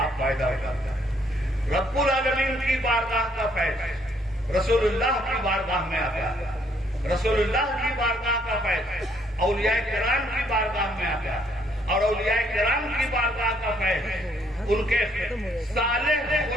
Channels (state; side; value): normal; both; correlation 0.67